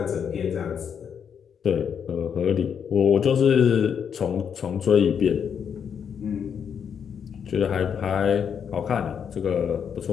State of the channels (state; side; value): quieter; right; 7.6 dB